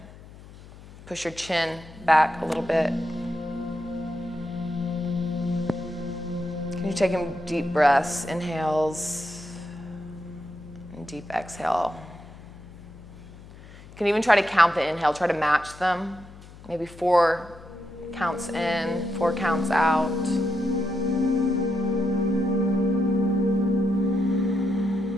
Push your chin back a little bit. Can you take in deep breaths, inhales, and deep exhale. You can even try to count the inhale, try to match them. Maybe 4 counts in, 4 counts out.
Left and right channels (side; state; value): left; noise; hum, 19 dB below the sound